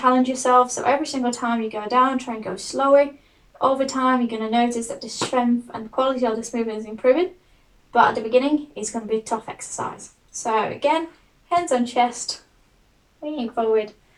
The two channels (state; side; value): identical; both; correlation 1.00